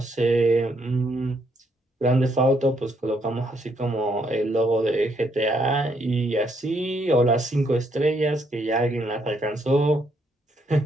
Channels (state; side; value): normal; both; correlation 0.73